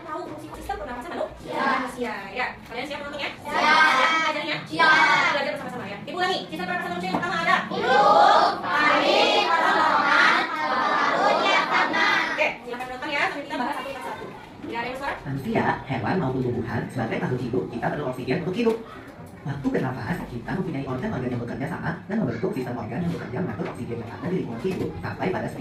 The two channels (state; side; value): identical; both; correlation 1.00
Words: tahu fungsi sistem pernapasan manusia ya. Kalian siap menontonnya? Siap. Belajarnya? Siap. Belajar bersama-sama ya. Ibu lagi, sistem pernapasan manusia yang pertama ada hidung, paru, kerongkongan, paru-paru, diafragma. Oke, silakan menonton ya sambil kita bahas satu persatu. Tidak ada yang suara? Manusia, hewan maupun tumbuhan sebagai makhluk hidup kita perlu oksigen untuk hidup. Waktu bernafas, kita mempunyai organ-organ yang bekerja sama dan membentuk sistem organ yang bekerja mengatur oksigen yang ada di lingkungan hidup sampai pada